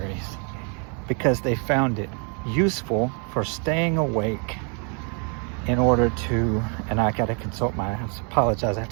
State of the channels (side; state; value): left; quieter; 37.9 dB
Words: because they found it useful for staying awake in order to, and I have to consult